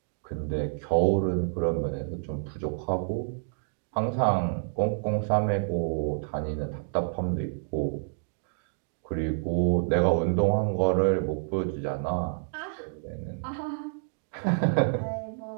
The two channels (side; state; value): left; silent; digital silence